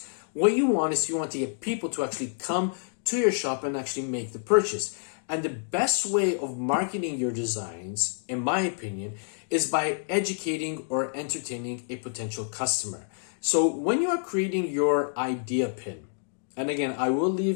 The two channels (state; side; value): silent; right; digital silence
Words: What you want is you want to get people to actually come to your shop and actually make the purchase. And the best way of marketing your designs, in my opinion, is by educating or entertaining a potential customer. So when you are creating your idea pin, and again, I will